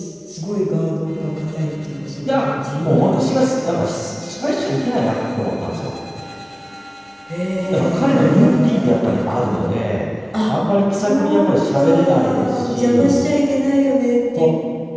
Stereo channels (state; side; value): identical; both; correlation 1.00